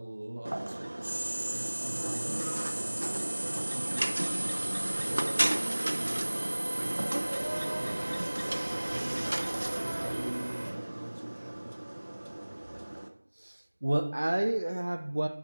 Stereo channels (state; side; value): inverted; both; correlation -1.00